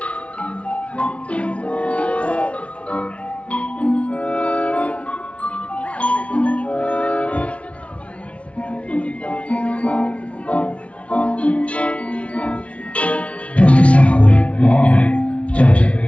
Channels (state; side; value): late; right; 0.062 ms